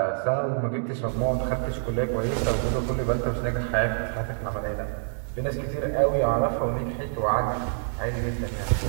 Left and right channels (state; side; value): silent; left; digital silence